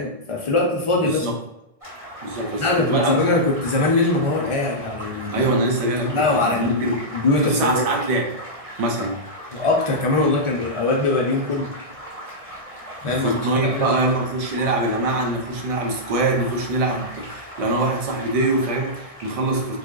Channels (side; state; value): left; late; 1.7 ms